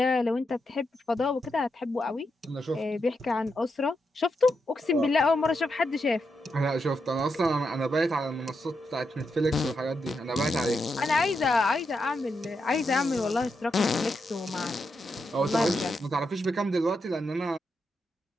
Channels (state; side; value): normal; both; correlation 0.84